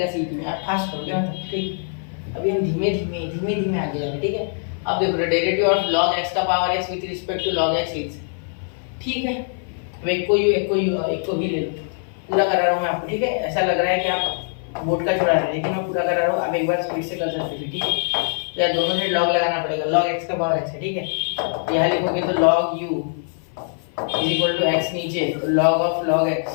सीटी में, आप फास्ट करोगे मतलब, ठीक। अभी हम धीमे धीमे आगे जाएंगे, ठीक है। अब देखो डेरिवेटिव ऑफ log x का power x with respect to log x is, ठीक है। अब एक को भी ले लो, पूरा करा रहा हूँ मैं आपको, ठीक है। ऐसा लग रहा है कि आप बोर्ड का छोड़ा रहे हैं, लेकिन मैं पूरा करा रहा हूँ, आप एक बार स्पीड से कर सकते हो, ठीक है। तो यार दोनों से log लगाना पड़ेगा, log x का पावर x है, ठीक है। यहाँ लिखोगे तो log u is equal to x नीचे, तो log ऑफ log x,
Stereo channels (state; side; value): silent; right; 55 dB below the other